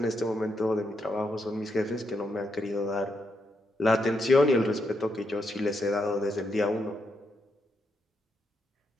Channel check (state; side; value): normal; both; correlation 0.81